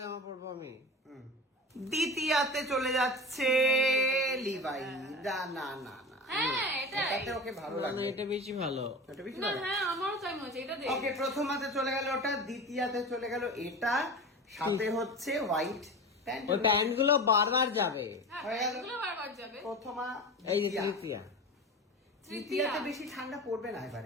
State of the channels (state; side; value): normal; both; correlation 0.30